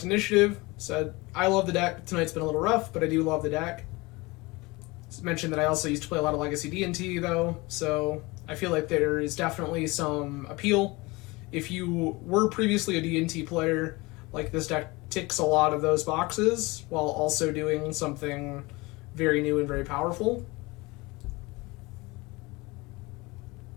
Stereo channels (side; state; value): right; quieter; 23.6 dB